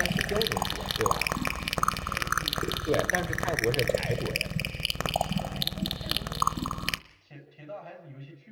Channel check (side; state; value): both; identical; correlation 1.00